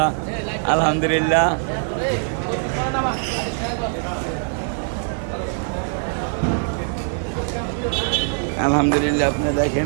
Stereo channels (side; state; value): left; silent; 57 dB below the other